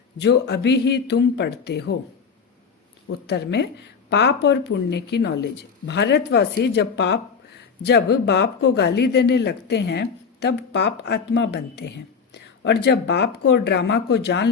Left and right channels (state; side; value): quieter; right; 5.8 dB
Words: जो अभी ही तुम पढ़ते हो? उत्तर में, पाप और पुण्य की नॉलेज। भारतवासी जब बाप को गाली देने लगते हैं तब पाप आत्मा बनते हैं, और जब बाप को ड्रामा को जान